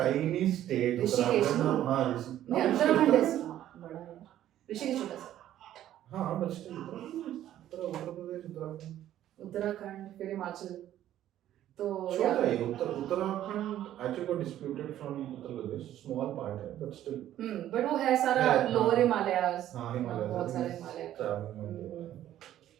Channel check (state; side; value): quieter; left; 12.3 dB